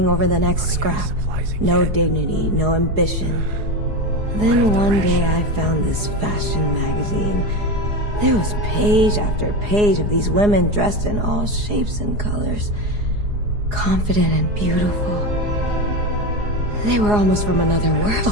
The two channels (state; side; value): late; left; 4.8 ms